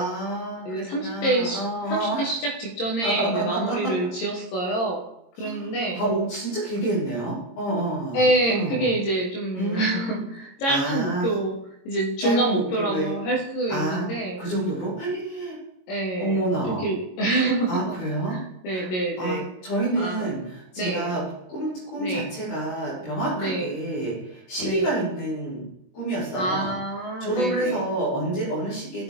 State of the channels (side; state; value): right; late; 22 ms